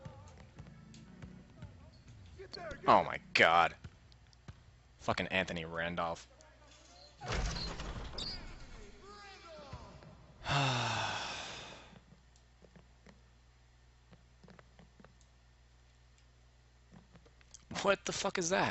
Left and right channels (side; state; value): both; identical; correlation 1.00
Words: Oh my god. Fucking Anthony Randolph. What the fuck is